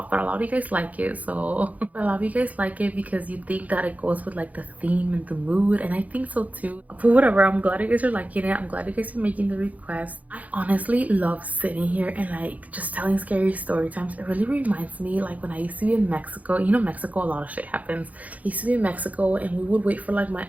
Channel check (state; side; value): late; left; 0.074 ms